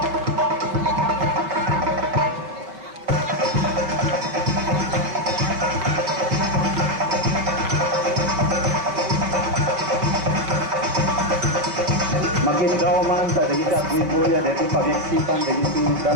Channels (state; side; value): late; left; 5.1 ms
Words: Magindaw man sa dagiti agwibuya dito pagyaksipan dagiti